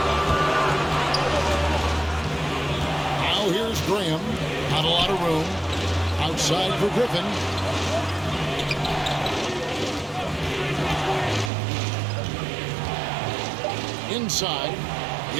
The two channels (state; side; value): drops out; left; at 11.5 s